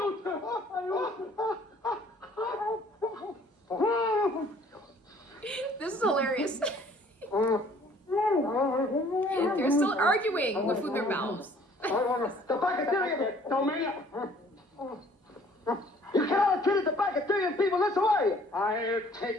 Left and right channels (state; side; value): normal; both; correlation 0.56